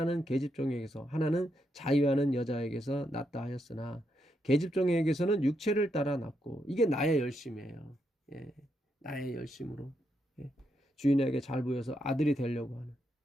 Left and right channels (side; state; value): both; normal; correlation 0.81